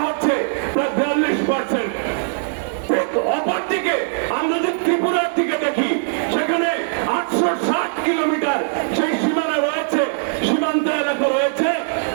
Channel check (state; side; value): silent; left; digital silence